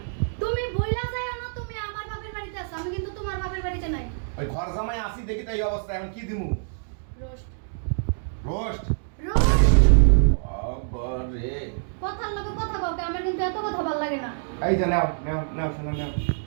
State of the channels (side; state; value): left; silent; digital silence